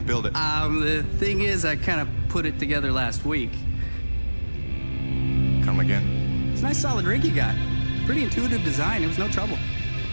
build it. The thing is, I kind of put it together last week. Come again? It's a nice solid rig you got. Pretty intuitive design. It was no trouble.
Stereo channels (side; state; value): both; inverted; correlation -1.00